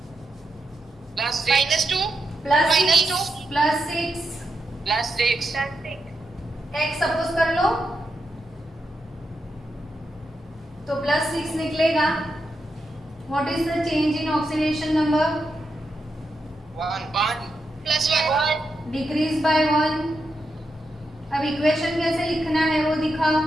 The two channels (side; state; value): both; normal; correlation 0.85